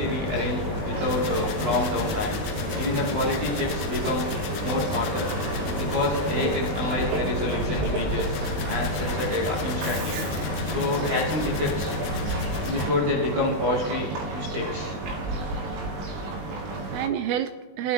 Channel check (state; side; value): late; left; 19 ms